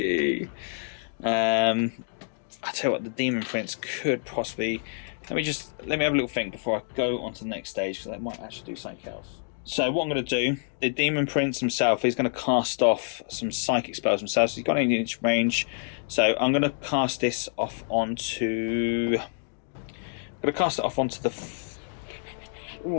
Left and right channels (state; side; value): silent; right; digital silence